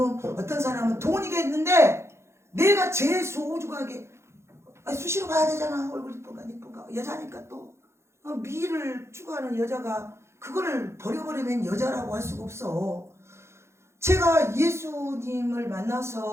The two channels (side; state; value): left; late; 0.13 ms